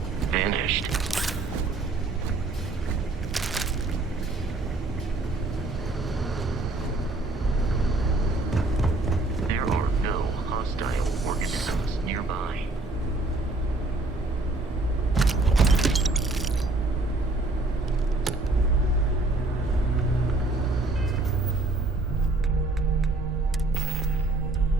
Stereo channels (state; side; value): quieter; left; 3.0 dB